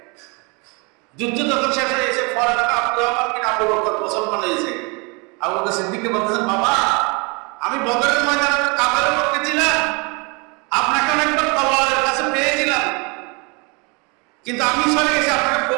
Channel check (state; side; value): quieter; left; 30.5 dB